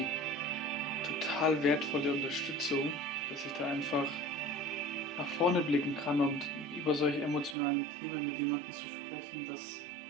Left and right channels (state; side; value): drops out; left; at 7.6 s